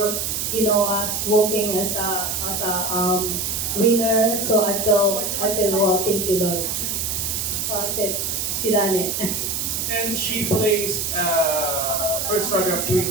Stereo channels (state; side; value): noise; right; hiss, 1 dB below the sound